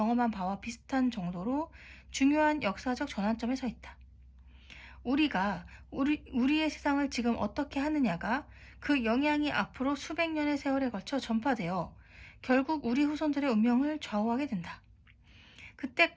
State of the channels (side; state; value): both; identical; correlation 1.00